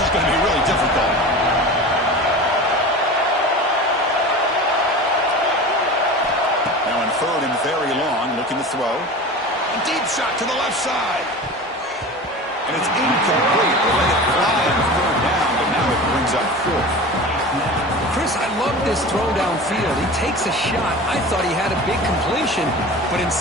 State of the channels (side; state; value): both; normal; correlation 0.34